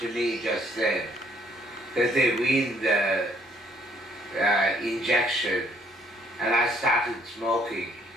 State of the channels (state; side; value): normal; both; correlation 0.66